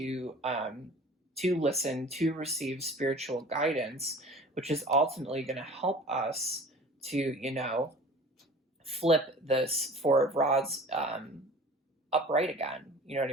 listen, to receive spiritual guidance, which is ultimately going to help us to, flip this Four of Rods upright again. You know what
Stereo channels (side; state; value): both; normal; correlation 0.43